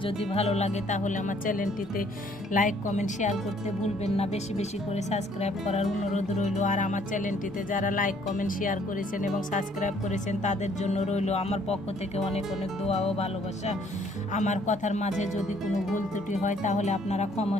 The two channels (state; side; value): normal; both; correlation 0.62